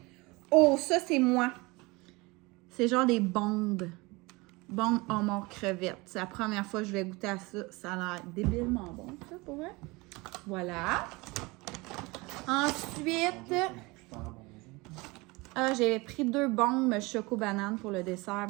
Oh, ça, c'est moi. C'est genre des bombes. Bombes homard crevettes. C'est la première fois que je vais goûter à ça. Ça a l'air débilement bon, ça, pour vrai. Voilà. Ensuite... j'ai pris 2 bombes choco-banane pour le dessert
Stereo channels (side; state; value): left; quieter; 24.2 dB